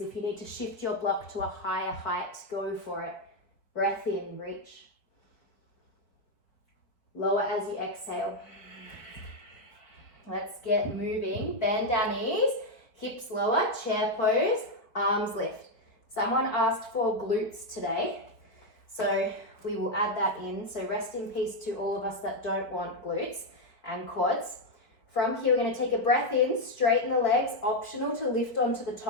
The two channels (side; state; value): right; late; 4.4 ms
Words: If you need to shift your block to a higher height, go for it. Breath in, reach. Lower as you exhale. Let's get moving. Bend our knees, hips lower, chair pose, arms lift. Someone asked for glutes today, so we will add that in. So rest in peace to all of us that don't want glutes and quads. From here, we're going to take a breath in, straighten the legs, optional to lift onto the